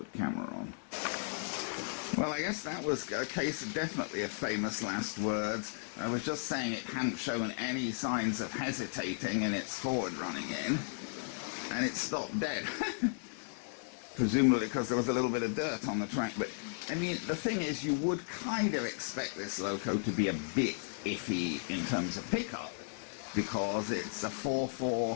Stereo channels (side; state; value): right; silent; 54 dB below the other